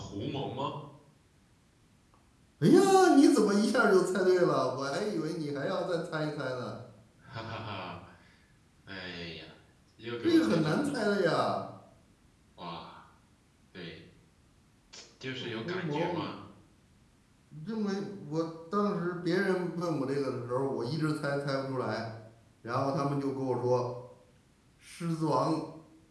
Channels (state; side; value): identical; both; correlation 1.00